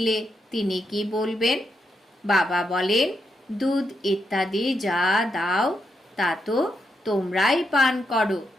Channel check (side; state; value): both; normal; correlation 0.82